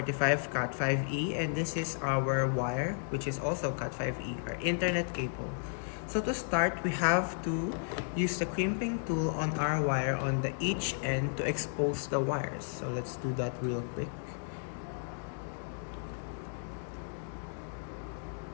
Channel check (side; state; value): right; silent; digital silence